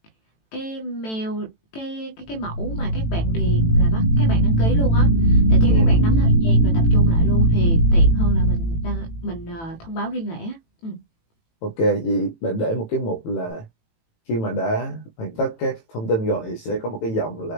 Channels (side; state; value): right; late; 18 ms